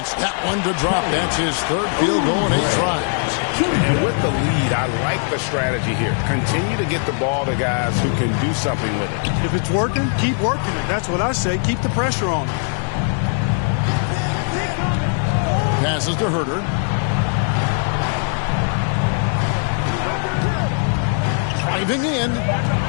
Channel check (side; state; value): right; silent; 56 dB below the other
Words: that one to drop. That's his 3rd field goal in 8 tries. And with the lead, I like the strategy here. Continue to get the ball to guys who can do something with it. If it's working, keep working it. That's what I say. Keep the pressure on it. Passes to Herter. Driving in.